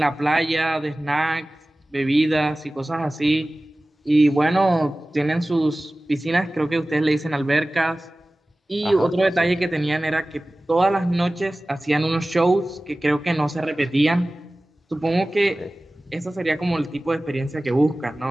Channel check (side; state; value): both; normal; correlation 0.97